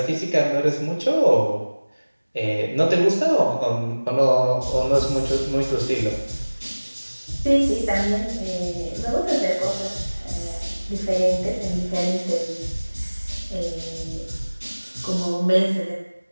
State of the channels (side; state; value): both; inverted; correlation -1.00